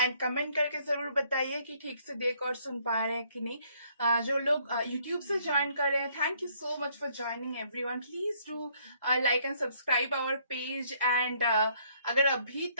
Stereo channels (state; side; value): inverted; both; correlation -0.66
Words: कमेंट करके जरूर बताइए कि ठीक से देख और सुन पा रहे हैं कि नहीं। जो लोग यूट्यूब से ज्वाइन कर रहे हैं, thank you so much for joining everyone. Please do like and subscribe our page and अगर अभी